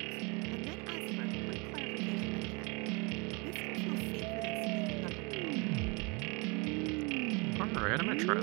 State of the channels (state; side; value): quieter; left; 29.7 dB